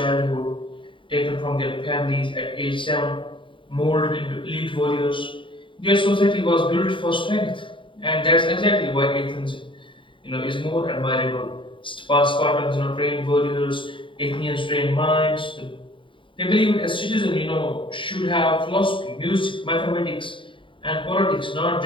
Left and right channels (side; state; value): right; late; 0.25 ms